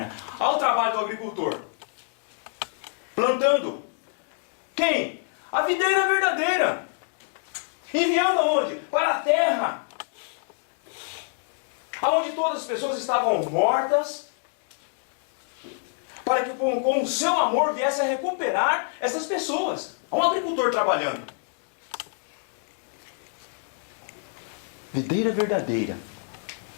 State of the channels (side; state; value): right; silent; digital silence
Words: Olha o trabalho do agricultor. Plantando. Quem? A videira verdadeira. Enviando aonde? Para a terra. Aonde todas as pessoas estavam mortas. Para que com o seu amor viesse a recuperar essas pessoas. Há um agricultor trabalhando. Videira verdadeira.